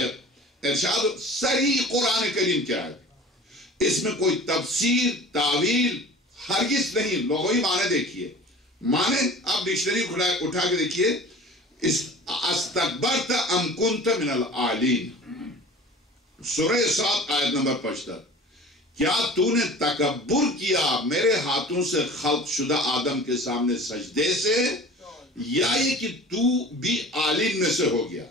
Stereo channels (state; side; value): normal; both; correlation 0.42